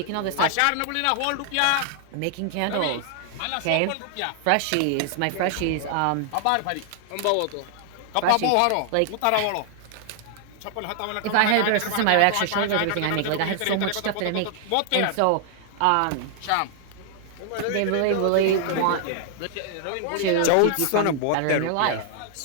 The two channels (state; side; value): different; both; correlation 0.00